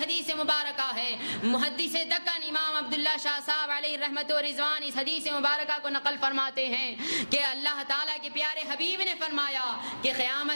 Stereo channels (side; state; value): both; inverted; correlation -1.00